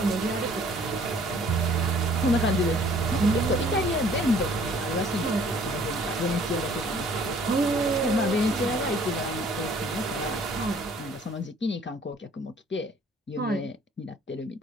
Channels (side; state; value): both; normal; correlation 0.56